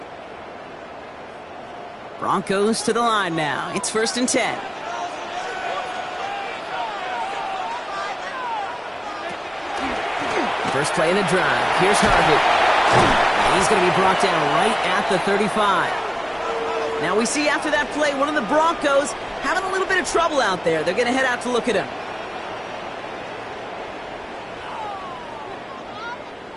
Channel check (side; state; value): both; identical; correlation 1.00